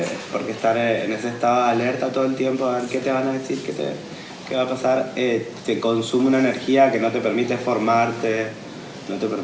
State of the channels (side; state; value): both; identical; correlation 1.00